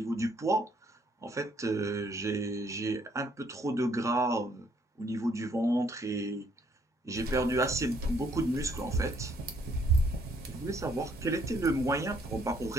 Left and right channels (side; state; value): both; normal; correlation 0.66